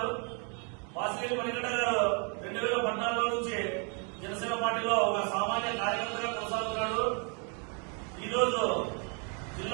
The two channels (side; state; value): left; quieter; 37.4 dB